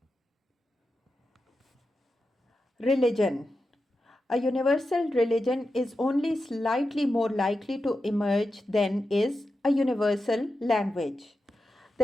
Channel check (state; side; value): normal; both; correlation 0.90